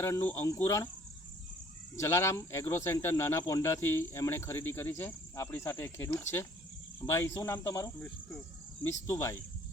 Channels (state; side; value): normal; both; correlation 0.58